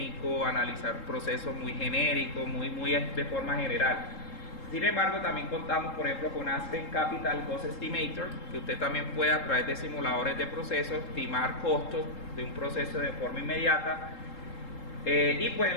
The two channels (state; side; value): late; right; 3.7 ms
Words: analizar procesos muy genéricos, muy de forma general. Sin embargo, también contamos, por ejemplo, con Aspen Capital Cost Estimator, que usted también puede a través de simuladores de procesos estimar costos de un proceso de forma inmediata. Y pues